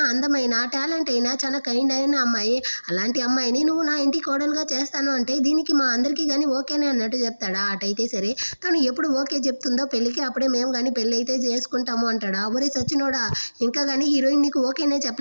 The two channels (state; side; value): inverted; both; correlation -1.00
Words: అందమైన టాలెంట్ అయినా చాలా కైండ్ అయిన అమ్మాయి, అలాంటి అమ్మాయిని నువ్వు నా ఇంటి కోడలు కోడలుగా చేస్తాను అంటే దీనికి మా అందరికీ కానీ ఓకేనే అన్నట్టు చెప్తాడా. అటైతే సరే తను ఎప్పుడు ఓకే చెప్తుందో పెళ్ళికి అప్పుడే మేము కానీ పెళ్ళి అయితే చేసుకుంటాము అంటాడా. ఒరే సచ్చినోడా, ఇంకా కానీ హీరోయిన్ నీకు ఓకేనే